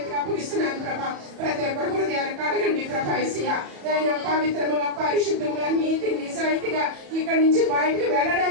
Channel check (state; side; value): late; left; 34 ms